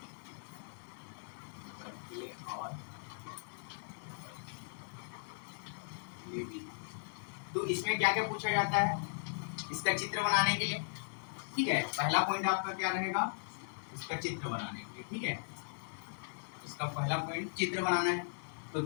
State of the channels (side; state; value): right; silent; digital silence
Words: बर्कले और हार्टले विधि। तो इसमें क्या क्या पूछा जाता है, इसका चित्र बनाने के लिए, ठीक है। पहला पॉइंट आपका क्या रहेगा, इसका चित्र बनाने के लिए, ठीक है। इसका पहला पॉइंट चित्र बनाना है, तो